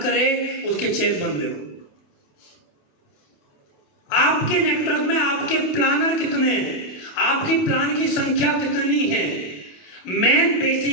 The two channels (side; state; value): right; late; 28 ms